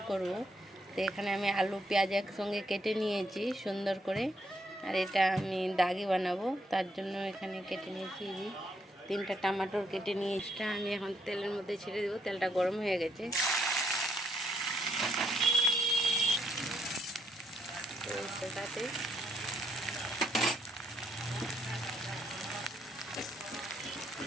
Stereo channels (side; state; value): both; normal; correlation 0.74